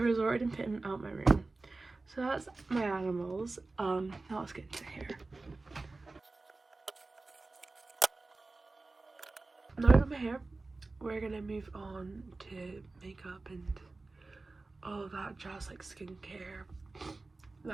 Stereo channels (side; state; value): left; quieter; 3.5 dB